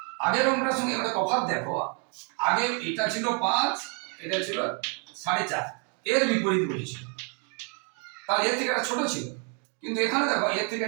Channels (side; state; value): left; quieter; 37.3 dB